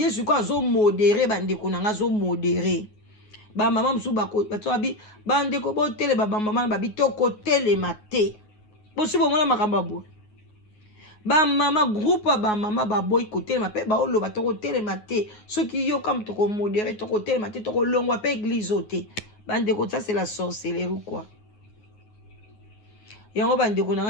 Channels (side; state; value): right; late; 9.3 ms